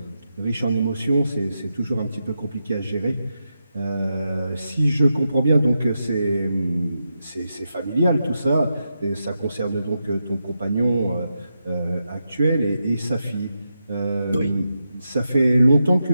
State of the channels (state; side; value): inverted; both; correlation -0.86